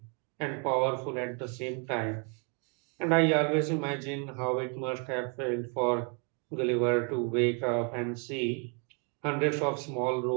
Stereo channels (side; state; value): left; quieter; 36.1 dB